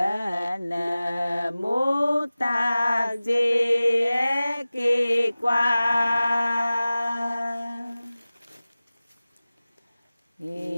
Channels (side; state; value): both; inverted; correlation -0.97